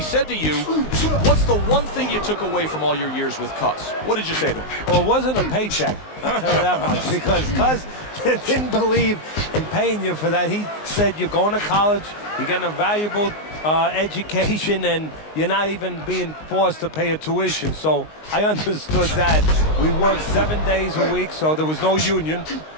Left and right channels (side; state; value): right; late; 19 ms